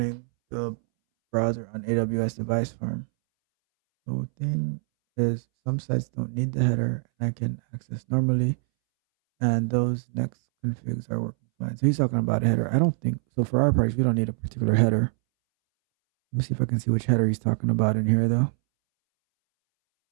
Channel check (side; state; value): left; silent; 62 dB below the other